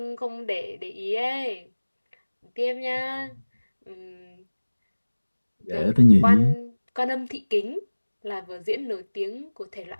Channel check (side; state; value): both; inverted; correlation -1.00